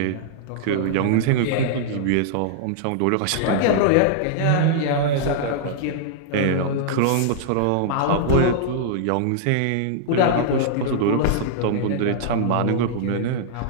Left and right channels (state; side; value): different; both; correlation -0.01